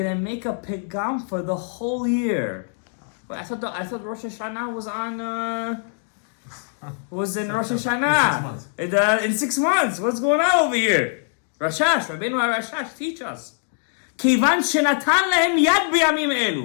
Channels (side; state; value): right; silent; digital silence